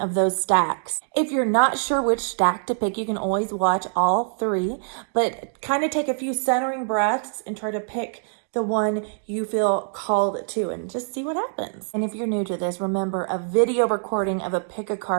those stacks. If you're not sure which stack to pick, you can always watch all 3, but kind of take a few centering breaths and try to pick the one you feel called to, and just see what happens. And if you're new to this, remember, a video recording of a pick a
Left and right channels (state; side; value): silent; left; digital silence